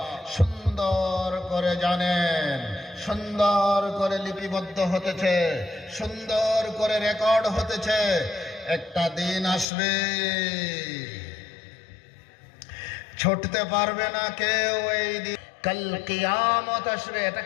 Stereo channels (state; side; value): drops out; right; at 9.7 s